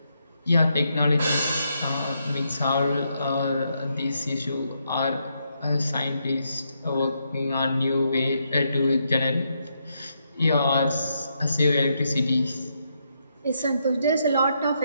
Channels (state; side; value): inverted; both; correlation -0.79